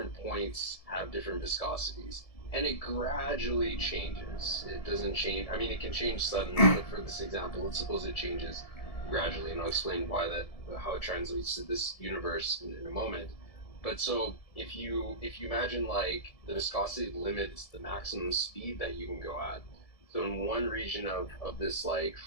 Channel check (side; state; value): right; late; 1.7 ms